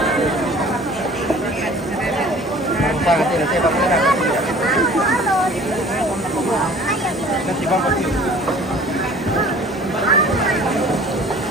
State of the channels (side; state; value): both; normal; correlation 0.48